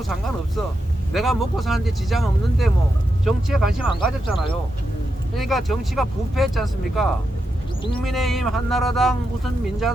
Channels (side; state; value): both; normal; correlation 0.86